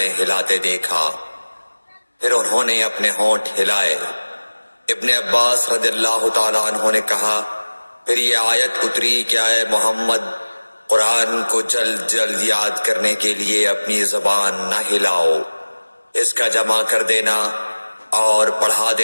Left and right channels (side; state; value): both; inverted; correlation -1.00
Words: ہلاتے دیکھا۔ پھر انہوں نے اپنے ہونٹ ہلائے۔ ابن عباس رضی اللہ تعالیٰ عنہ نے کہا، پھر یہ آیت اتری کہ اے محمد، قرآن کو جلد جلد یاد کرنے کے لیے اپنی زبان نہ ہلاؤ، اس کا جمع کر دینا اور پڑھا